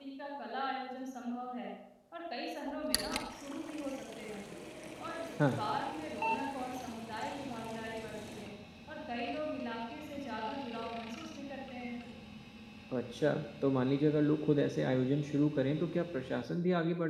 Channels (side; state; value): both; identical; correlation 1.00